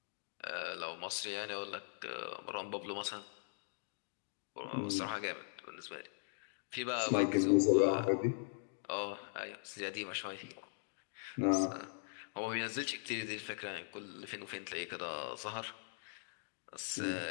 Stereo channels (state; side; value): silent; right; digital silence